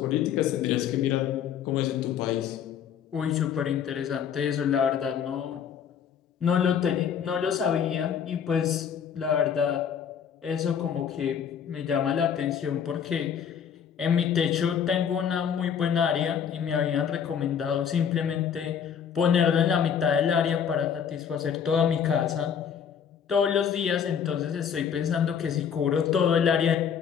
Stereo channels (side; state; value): right; quieter; 7.9 dB